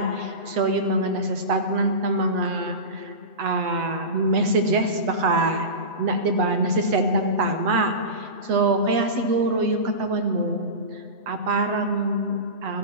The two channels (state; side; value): late; left; 8.0 ms